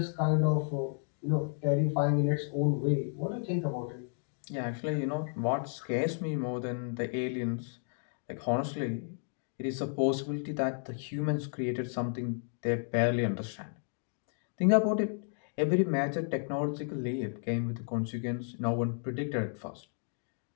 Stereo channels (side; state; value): right; silent; 56 dB below the other